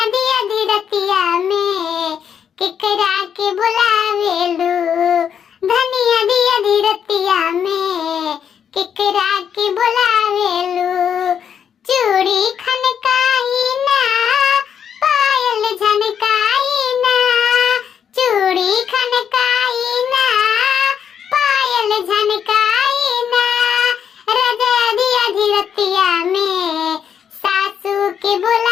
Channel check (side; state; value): right; quieter; 8.1 dB